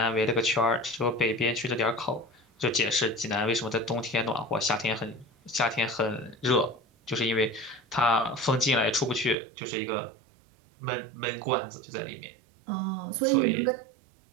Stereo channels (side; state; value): left; drops out; at 9.3 s